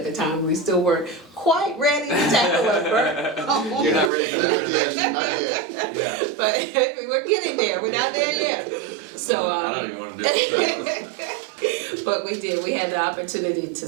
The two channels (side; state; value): left; drops out; at 4.1 s